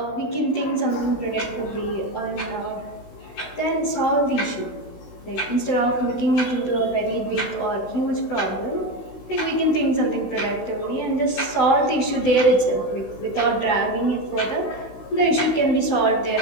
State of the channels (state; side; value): late; right; 16 ms